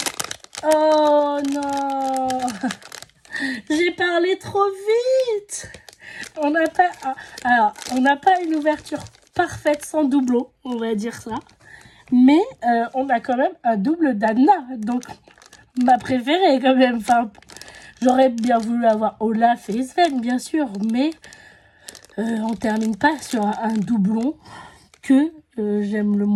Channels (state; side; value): identical; both; correlation 1.00